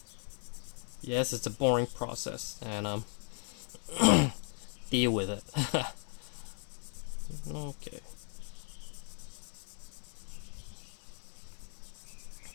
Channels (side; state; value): right; silent; 53 dB below the other